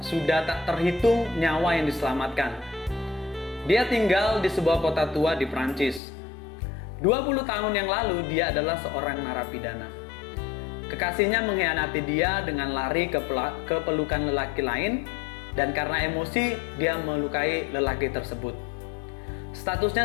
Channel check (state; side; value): drops out; right; at 6.0 s